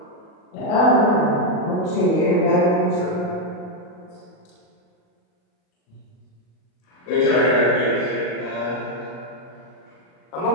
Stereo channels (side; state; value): right; late; 39 ms